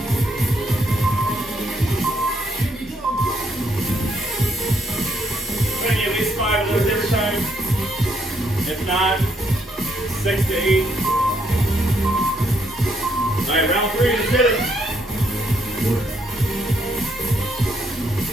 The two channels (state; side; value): normal; both; correlation 0.73